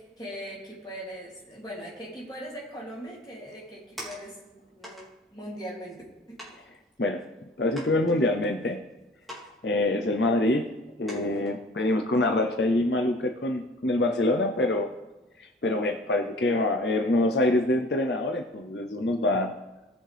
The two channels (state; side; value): normal; both; correlation 0.47